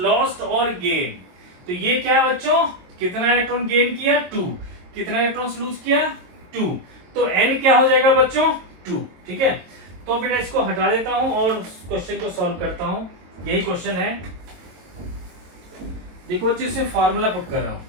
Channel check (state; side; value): late; left; 22 ms